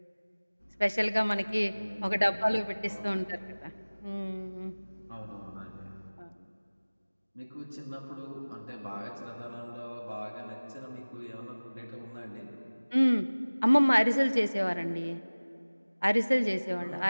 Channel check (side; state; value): both; inverted; correlation -1.00